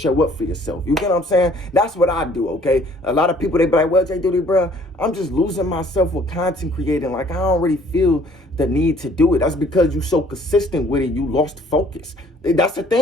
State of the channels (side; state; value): both; normal; correlation 0.58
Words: up for yourself. You get what I'm saying? That's what I do, okay? A lot of people, they be like, well, Jayyduty, bro, I'm just losing myself with content creating. Like, I don't really feel the need to do it. That's because you so consistent with it, you lost focus. That's the